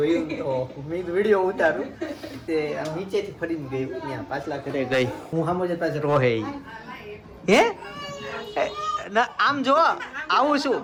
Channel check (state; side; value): identical; both; correlation 1.00